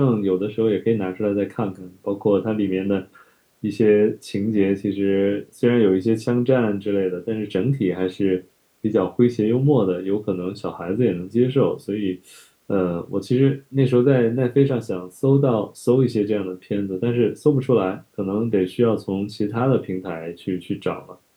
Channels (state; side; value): identical; both; correlation 1.00